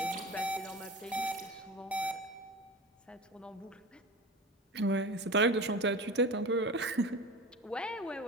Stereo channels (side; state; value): both; normal; correlation 0.32